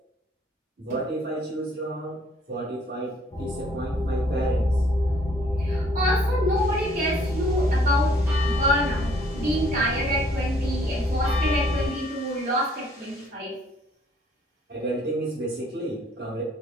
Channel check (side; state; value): both; normal; correlation 0.62